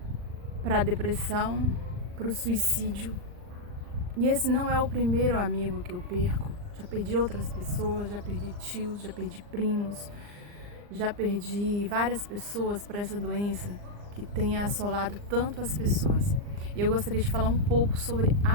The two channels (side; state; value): left; late; 39 ms